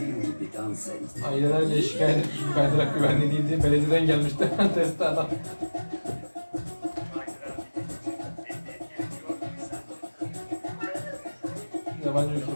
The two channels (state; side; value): inverted; both; correlation -1.00